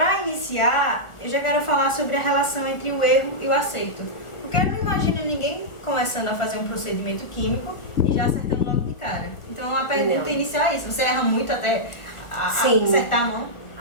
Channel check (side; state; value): right; late; 1.4 ms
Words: iniciar, eu já quero falar sobre a relação entre o erro e o acerto. Porque eu não imagino ninguém começando a fazer um procedimento químico e já acertando logo de cara. Então, a pergunta inicial é isso. Você erra muito até acertar a mão?